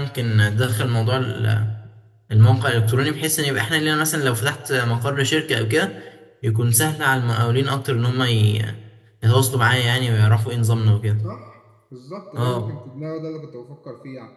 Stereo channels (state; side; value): identical; both; correlation 1.00